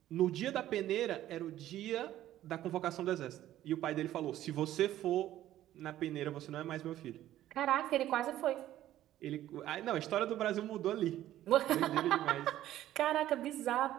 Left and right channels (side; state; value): left; quieter; 13.3 dB